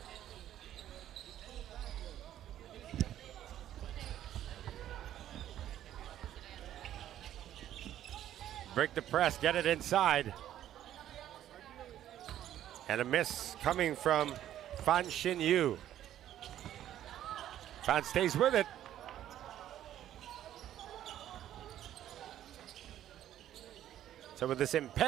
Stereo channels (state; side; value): quieter; left; 11.8 dB